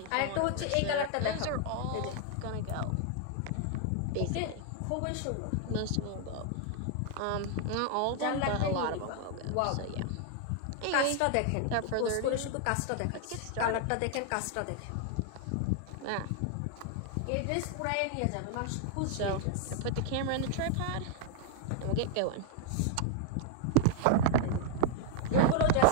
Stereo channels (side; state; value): both; different; correlation 0.00